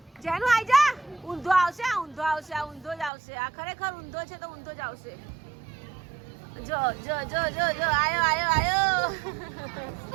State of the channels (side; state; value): left; drops out; at 3.1 s